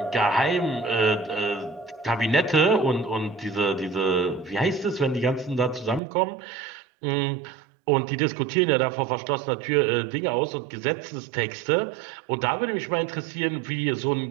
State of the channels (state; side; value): drops out; left; at 6.0 s